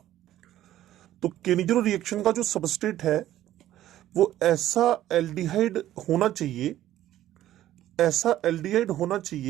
तो केनिजिरो रिएक्शन का जो सबस्ट्रेट है वो ऐसा एल्डिहाइड होना चाहिए, ऐसा एल्डिहाइड होना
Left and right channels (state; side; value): quieter; left; 13.3 dB